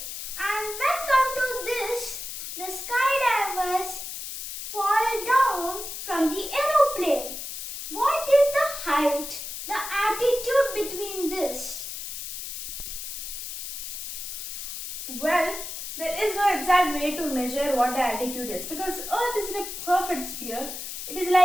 And when come to this, the skydivers fall down from the aeroplane. What is the height, the altitude between this? Well, there is no exact way to measure what the altitude is because Earth is in a perfect sphere. It is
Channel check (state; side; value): noise; left; hiss, 7 dB below the sound